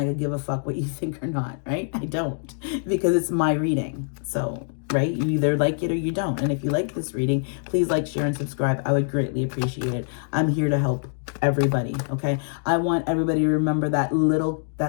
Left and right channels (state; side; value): silent; right; digital silence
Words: could give a fuck what you think or not, right? I don't, because it's my reading. So, right? You either like it or you don't. And if you like this reading, please like, share, and subscribe. I would greatly appreciate it. I'm here to help everybody, okay? I want everybody to remember that little